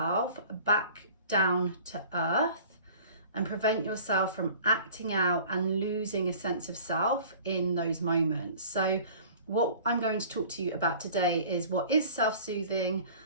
back down to earth and prevent yourself from acting out and losing a sense of self in those moments? So what I'm going to talk to you about today is what is self-soothing,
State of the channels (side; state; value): both; inverted; correlation -0.46